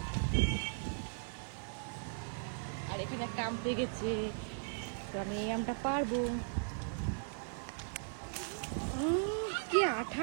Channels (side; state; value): left; silent; digital silence